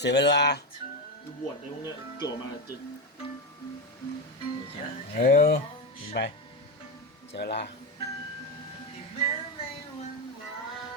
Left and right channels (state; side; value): normal; both; correlation 0.13